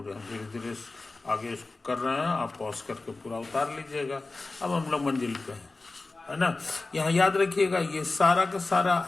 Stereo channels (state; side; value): quieter; right; 3.4 dB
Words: हम धीरे धीरे आगे इसको कर रहे हैं, आप पॉज करके पूरा उतार लीजिएगा। अब हम लोग मंजिल पे हैं, है ना। यहाँ याद रखिएगा ये सारा का सारा